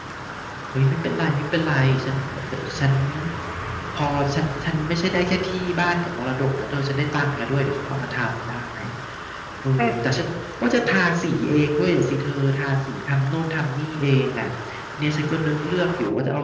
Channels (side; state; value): both; identical; correlation 1.00